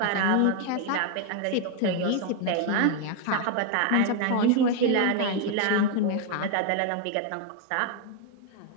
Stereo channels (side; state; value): both; different; correlation 0.01